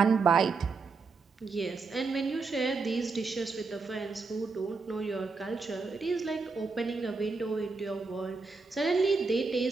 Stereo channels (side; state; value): left; quieter; 4.3 dB